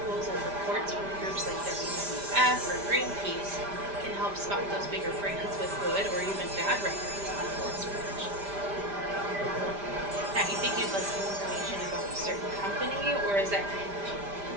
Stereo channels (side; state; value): left; late; 5.0 ms